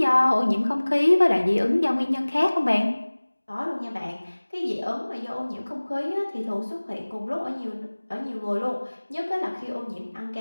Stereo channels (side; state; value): both; inverted; correlation -1.00